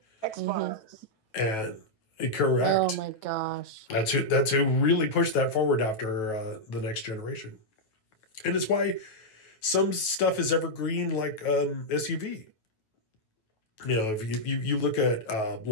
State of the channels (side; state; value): right; late; 9.3 ms